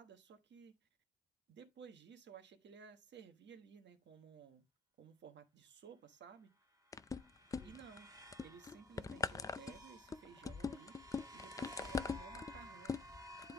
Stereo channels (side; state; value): right; quieter; 3.5 dB